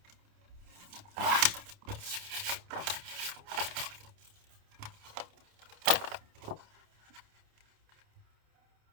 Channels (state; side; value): late; left; 28 ms